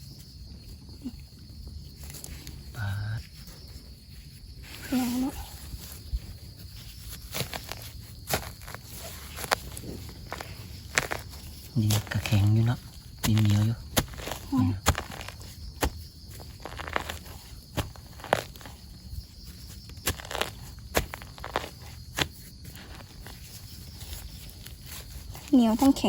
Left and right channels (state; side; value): identical; both; correlation 1.00